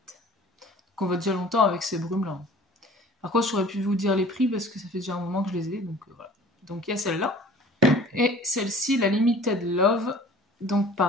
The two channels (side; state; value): both; normal; correlation 0.47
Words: on va déjà longtemps avec ces brumes-là. Par contre, j'aurais pu vous dire les prix parce que ça fait déjà un moment que je les ai. Donc voilà. Donc il y a celle-là. Et celle-ci, la Limited Love. Donc